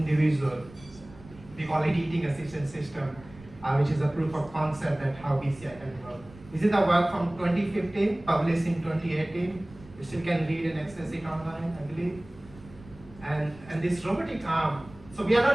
We call it eating assistance system, which is a proof of concept that how BCI can work. This is the work from 2015, published in 2018. You still can read and access it online, I believe. And this robotic arm, so we are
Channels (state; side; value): noise; right; rumble, 21 dB below the sound